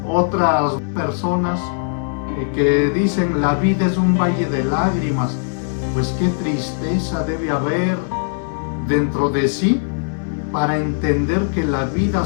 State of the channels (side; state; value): right; silent; digital silence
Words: Otras personas que dicen la vida es un valle de lágrimas, pues qué tristeza debe haber dentro de sí para entender que la vida